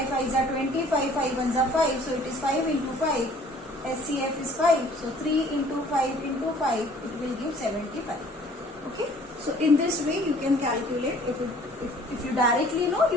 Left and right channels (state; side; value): normal; both; correlation 0.54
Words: are 20, 5 5 1s are 5. So it is 5 into 5. SCF is 5. So 3 into 5 into 5, it will give 75. Okay, so in this way you can calculate. If you directly know,